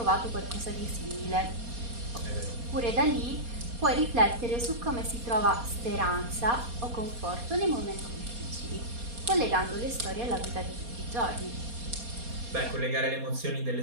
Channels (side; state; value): left; late; 4.2 ms